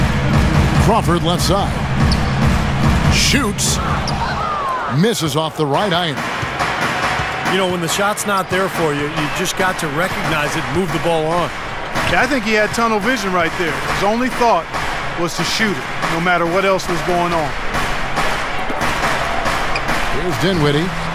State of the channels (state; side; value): identical; both; correlation 1.00